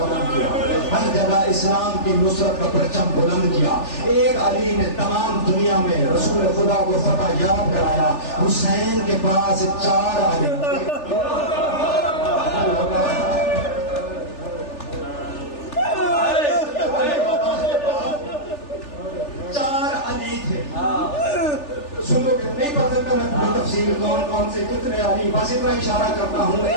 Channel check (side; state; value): right; late; 3.4 ms